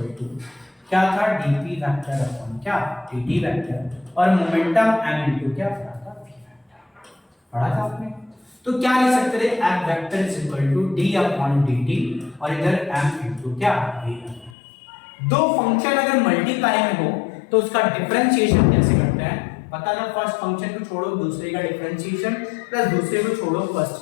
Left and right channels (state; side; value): drops out; right; at 14.6 s